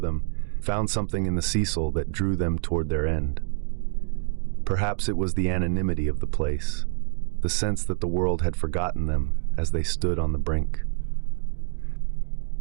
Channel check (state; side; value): silent; left; 61 dB below the other